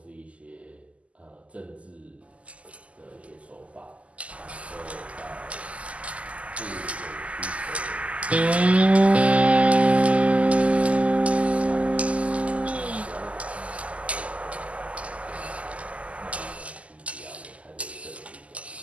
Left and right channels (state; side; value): late; left; 0.064 ms